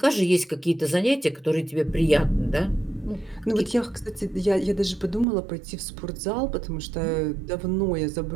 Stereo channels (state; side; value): drops out; left; at 5.2 s